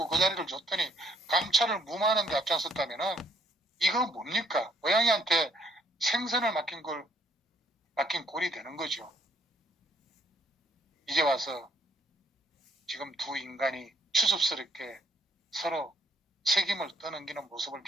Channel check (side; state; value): both; normal; correlation 0.64